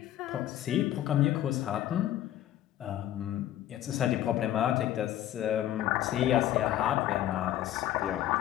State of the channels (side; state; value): right; quieter; 12.6 dB